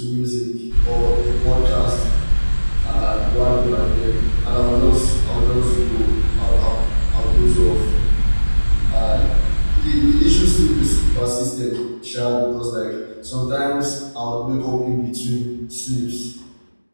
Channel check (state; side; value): inverted; both; correlation -1.00